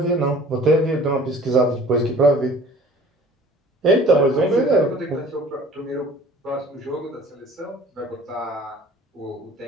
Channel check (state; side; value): normal; both; correlation 0.48